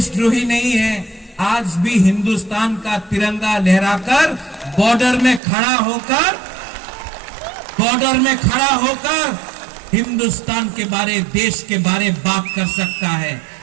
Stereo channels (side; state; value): left; drops out; at 5.4 s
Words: नहीं है, आज भी हिंदुस्तान का तिरंगा लहराकर बॉर्डर में खड़ा होकर हिंदुस्तान के बारे, देश के बारे बात कर सकता है।